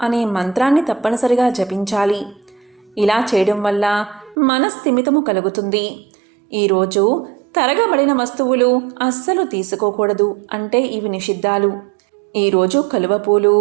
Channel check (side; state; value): left; drops out; at 4.4 s